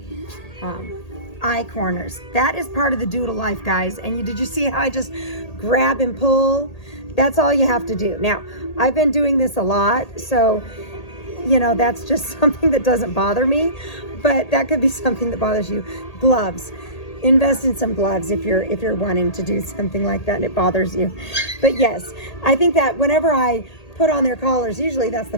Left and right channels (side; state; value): right; late; 1.8 ms